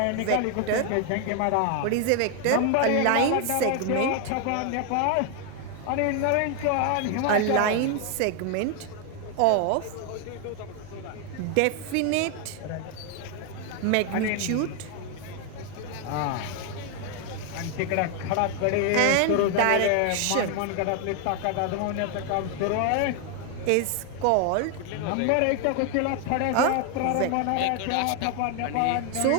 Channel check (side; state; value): both; different; correlation 0.01